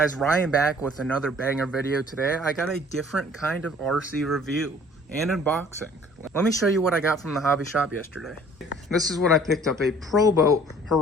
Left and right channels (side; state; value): both; normal; correlation 0.53